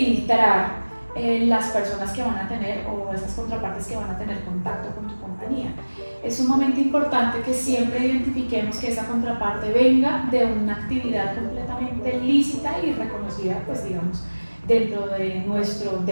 las personas que van a tener, o esas contrapartes que van a tener contacto con tu compañía. compañía. Es sumamente importante que siempre identifiquemos que esa contraparte venga de una actividad completamente lícita y reconocida, pues digamos, dentro de nuestro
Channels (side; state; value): both; inverted; correlation -1.00